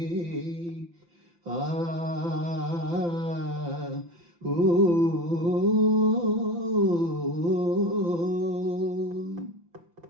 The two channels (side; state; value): left; late; 5.9 ms